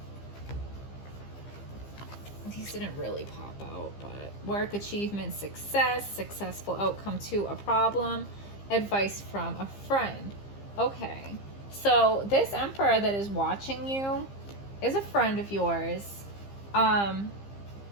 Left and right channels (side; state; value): right; late; 15 ms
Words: These didn't really pop out, but work, achievement, success, successful outcome to a problem, advice from a friend. Okay, so this Emperor that is watching you is a friend of yours, and